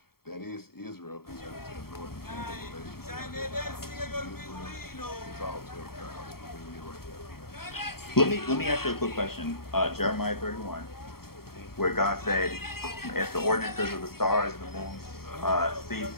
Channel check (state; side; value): late; right; 0.94 ms